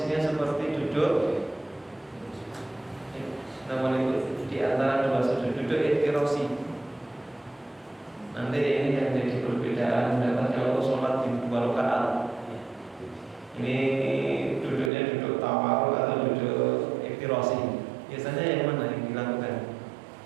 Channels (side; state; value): left; drops out; at 14.9 s